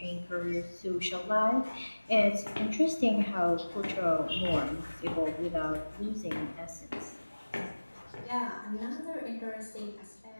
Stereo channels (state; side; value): inverted; both; correlation -1.00